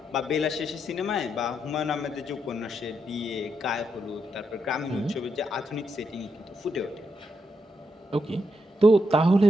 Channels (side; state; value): both; normal; correlation 0.81